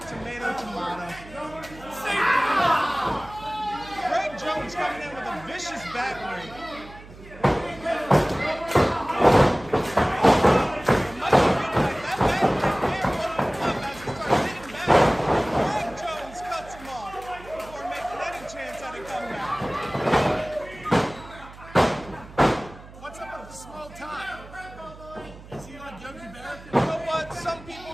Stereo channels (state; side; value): noise; right; hum, 18 dB below the sound